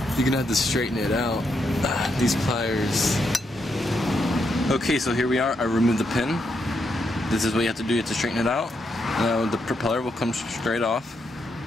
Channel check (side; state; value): both; normal; correlation 0.80